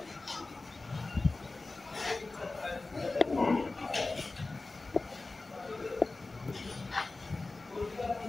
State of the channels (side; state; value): right; quieter; 3.4 dB